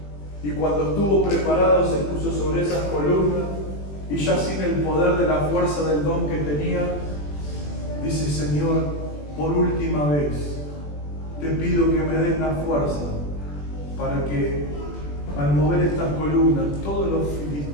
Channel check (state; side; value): late; right; 21 ms